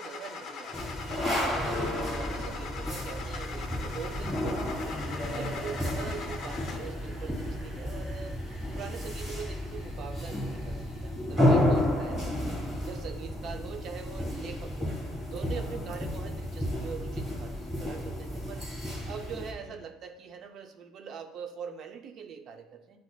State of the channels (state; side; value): normal; both; correlation 0.72